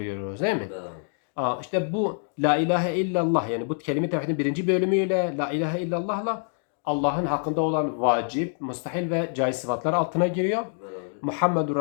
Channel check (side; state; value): right; silent; 57 dB below the other